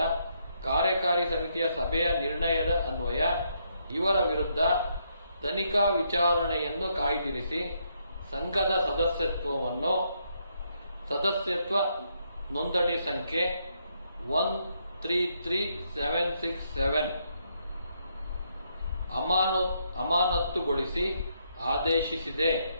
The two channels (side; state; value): both; inverted; correlation -0.76